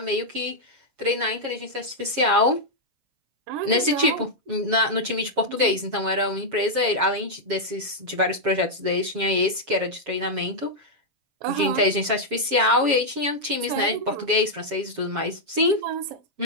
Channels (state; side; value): late; left; 7.3 ms